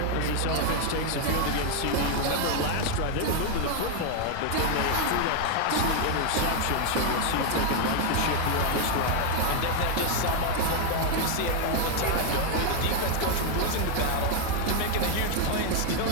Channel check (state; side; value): different; both; correlation 0.00